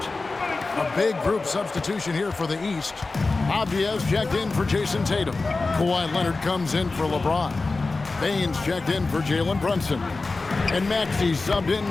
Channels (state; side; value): quieter; right; 3.6 dB